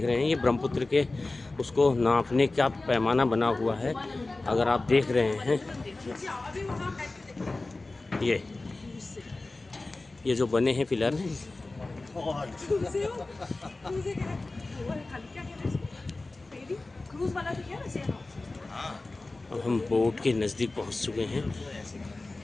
रहे हैं, ये ब्रह्मपुत्र के उसको नापने का पैमाना बना हुआ है। अगर आप देख रहे हैं ये जो बने हैं पिलर, अब हम बोट के नज़दीक पहुंच चुके हैं।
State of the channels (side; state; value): right; quieter; 3.2 dB